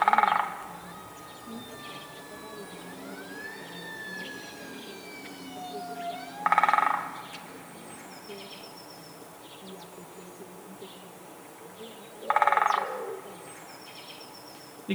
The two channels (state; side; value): identical; both; correlation 1.00